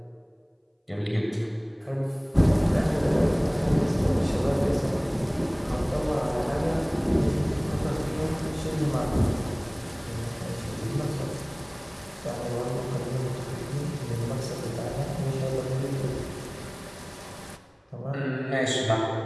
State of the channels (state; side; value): identical; both; correlation 1.00